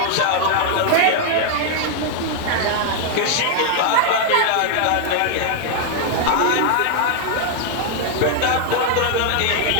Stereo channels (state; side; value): different; both; correlation 0.00